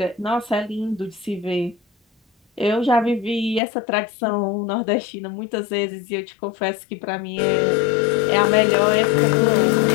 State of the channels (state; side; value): drops out; right; at 3.6 s